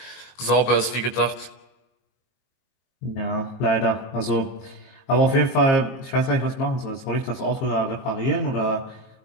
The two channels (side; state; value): right; late; 22 ms